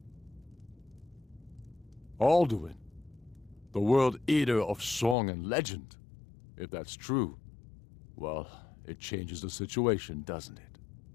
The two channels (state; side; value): drops out; right; at 5.2 s